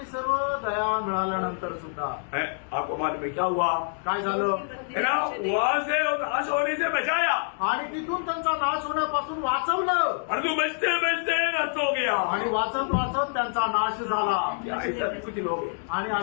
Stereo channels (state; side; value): silent; right; digital silence